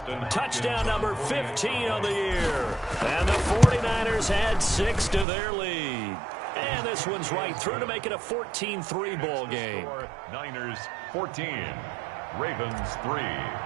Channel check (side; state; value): left; drops out; at 5.2 s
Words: touchdown number 15 of the year. And the 49ers add 6 to their lead. And this one's right through to make it a 14-3 ball game. Niners 14, Ravens 3.